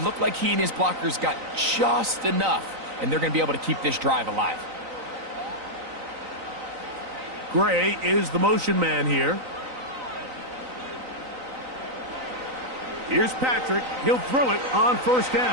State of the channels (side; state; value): left; late; 3.9 ms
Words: looked like he and his blockers got just enough, and they're going to be able to keep this drive alive. Gray is the motion man here. Here's Patrick. He'll throw it on 1st